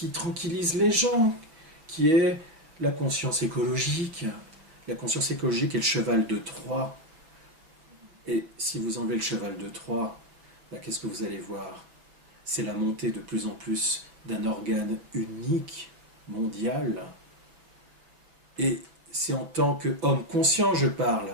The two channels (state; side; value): late; left; 6.3 ms